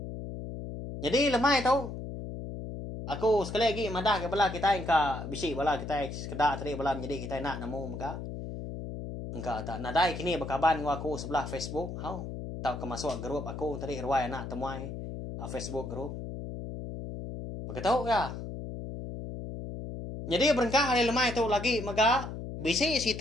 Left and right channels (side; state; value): left; noise; hum, 7 dB below the sound